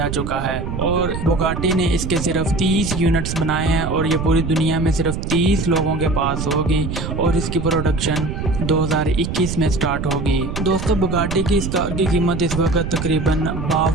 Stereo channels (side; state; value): right; noise; rumble, 4 dB below the sound